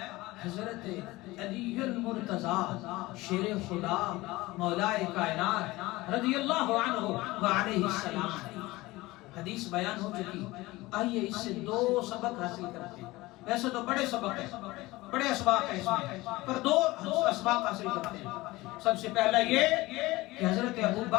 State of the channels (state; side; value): quieter; right; 20.0 dB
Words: حضرت علی المرتضیٰ شیر خدا مولا کائنات رضی اللہ عنہ وعلیہ السلام۔ حدیث بیان ہو چکی، آئیے اس سے دو سبق حاصل کرتے ہیں۔ ویسے تو بڑے سبق ہیں، بڑے اسباق ہیں اس میں، پر دو اسباق حاصل کرتے ہیں۔ سب سے پہلا یہ کہ حضرت ابو